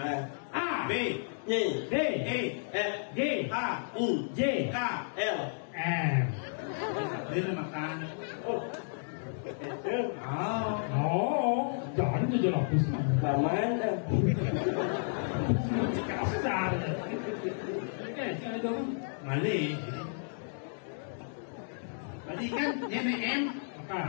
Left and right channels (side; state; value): right; silent; digital silence